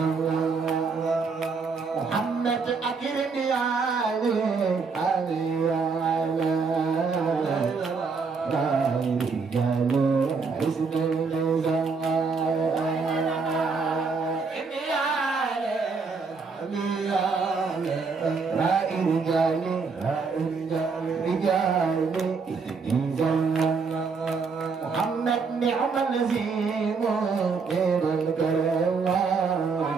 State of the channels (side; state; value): left; quieter; 4.9 dB